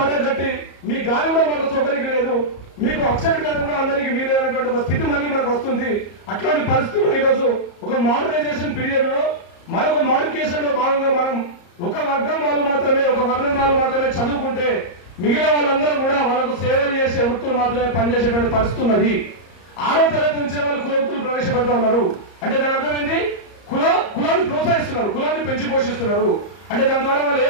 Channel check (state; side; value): late; right; 34 ms